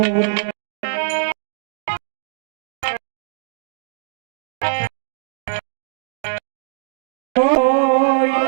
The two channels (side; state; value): left; silent; digital silence